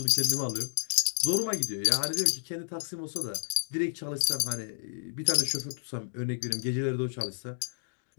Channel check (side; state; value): right; silent; digital silence